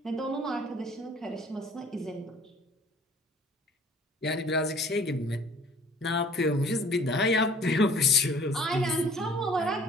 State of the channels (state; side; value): normal; both; correlation 0.53